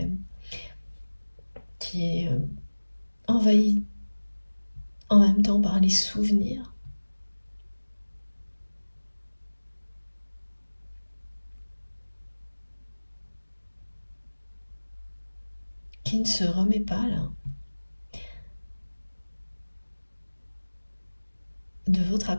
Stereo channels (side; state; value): both; inverted; correlation -1.00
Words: envahie en même temps par les souvenirs. Qui ne se remet pas là de votre